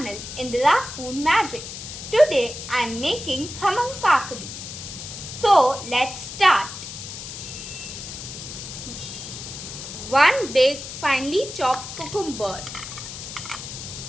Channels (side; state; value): left; noise; hiss, 10 dB below the sound